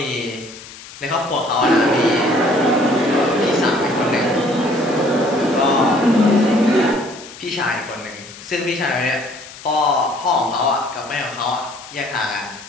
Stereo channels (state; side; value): noise; left; hiss, 17 dB below the sound